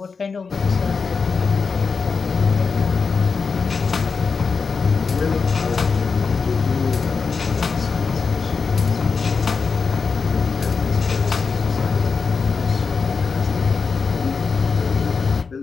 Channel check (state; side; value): quieter; right; 5.1 dB